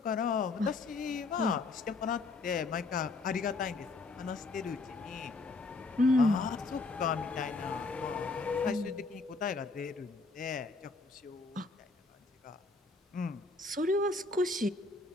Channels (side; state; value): right; quieter; 3.5 dB